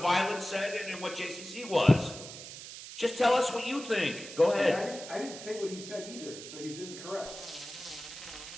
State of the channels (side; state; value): right; noise; hiss, 12 dB below the sound